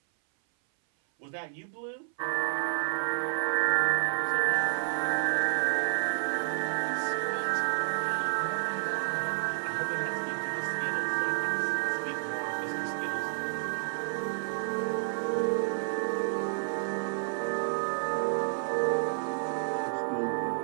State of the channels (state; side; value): silent; left; 58 dB below the other